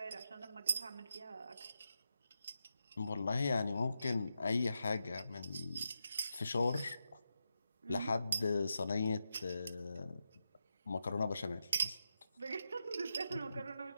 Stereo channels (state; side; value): inverted; both; correlation -0.87